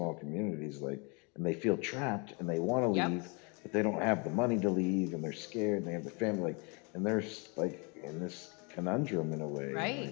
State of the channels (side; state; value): right; quieter; 32.5 dB